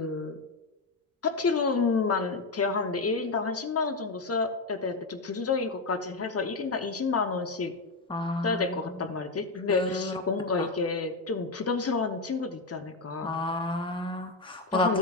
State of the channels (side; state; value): right; quieter; 3.6 dB